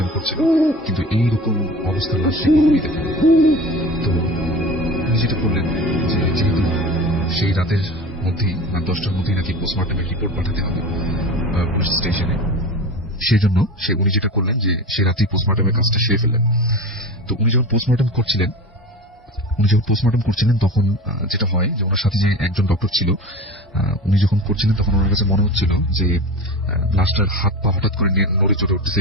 করছিল, কিন্তু এইরকম অবস্থার লাশ সে কখনই দেখেনি। তো উনি যেটা করলেন যে যেহেতু সেই রাতের মধ্যেই, রাত 10টার মধ্যেই নাকি পোস্টমর্টমের রিপোর্ট পাঠাতে হবে পুলিশ স্টেশনে, সেই জন্য উনি যেটা করলেন যে সে রাতেই পোস্টমর্টমের কাজটা সেরে ফেললেন। তো উনি যখন পোস্টমর্টম করছিলেন তখন যেটা হয় যে ওনার সাথে যে একজন ডক্টর ছিল, উনি যখন করছিলেন তখন ওনার কাছে মনে হচ্ছিল যে লাশটার হাত পা হঠাৎ করে নড়ে চড়ে উঠতেছে,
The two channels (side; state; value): both; normal; correlation 0.32